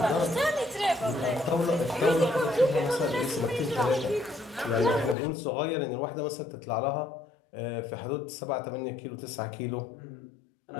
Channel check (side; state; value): right; drops out; at 5.2 s